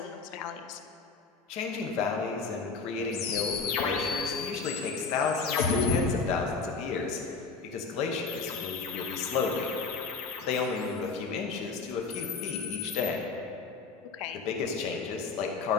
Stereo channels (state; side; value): quieter; right; 4.6 dB